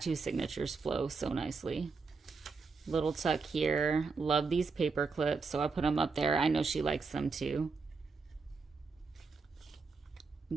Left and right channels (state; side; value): quieter; left; 4.6 dB